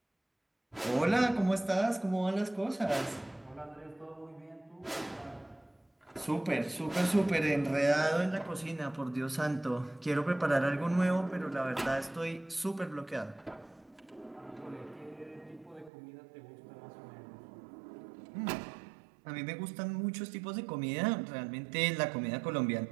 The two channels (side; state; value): left; drops out; at 15.9 s